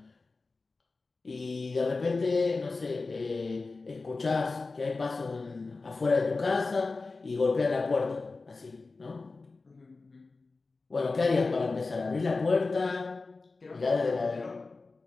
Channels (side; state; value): right; quieter; 3.8 dB